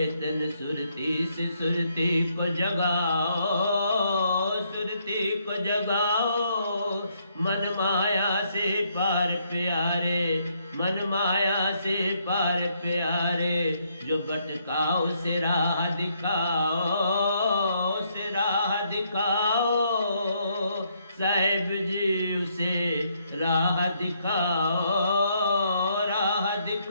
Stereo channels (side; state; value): both; inverted; correlation -0.72